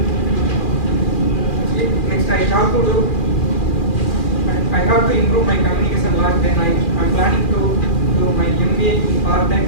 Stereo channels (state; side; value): late; right; 2.4 ms